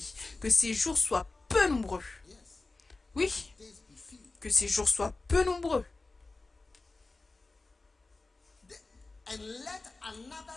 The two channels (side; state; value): right; quieter; 3.4 dB